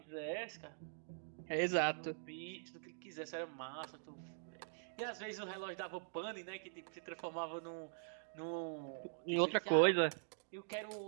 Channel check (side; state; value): left; silent; digital silence